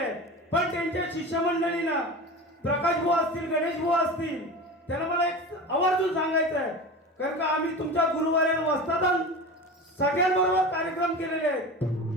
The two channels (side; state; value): both; normal; correlation 0.30